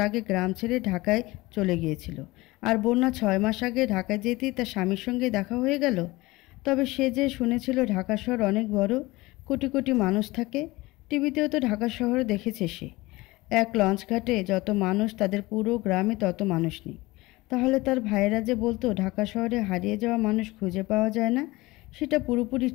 আগে গ্রাম ছেড়ে ঢাকায় চলে গিয়েছিল। আর বন্যা 6 মাস আগে ঢাকায় যেতেই তার স্বামীর সঙ্গে দেখা হয়ে গেল। তবে সে যে শুনেছিল ঢাকা শহর অনেক বড়, কোটি কোটি মানুষ থাকে। টিভিতেও তো ঢাকা শহরে দেখেছে সে। এক লঞ্চ ঘাটে যত মানুষ, তাদের পুরো গ্রামে তত মানুষ নেই। তাহলে তার ভাইয়েরা যে বলতো ঢাকা শহরে হারিয়ে যাওয়া মানুষ খুঁজে পাওয়া যায় না, সেটা পুরোপুরি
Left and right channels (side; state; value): right; quieter; 20.8 dB